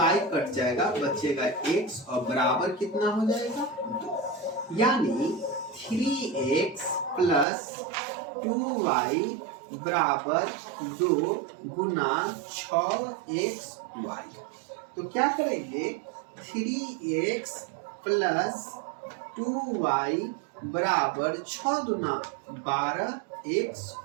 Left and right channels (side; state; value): left; drops out; at 7.5 s